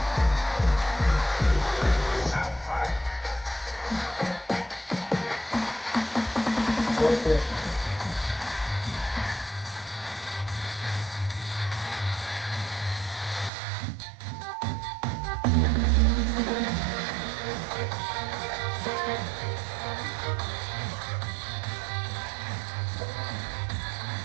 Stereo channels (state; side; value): drops out; left; at 13.5 s